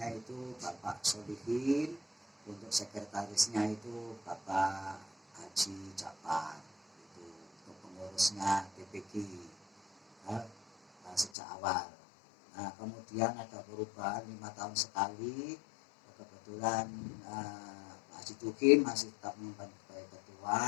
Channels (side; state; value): right; drops out; at 11.3 s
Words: itu Bapak Solihin, untuk sekretarisnya itu Bapak Haji Japar, itu untuk pengurusnya TPG sejak awal. Nah, kemudian ada perubahan 5 tahun sekali. Kebetulan Pak Haji Tukin masih tetap menyimpan sebagai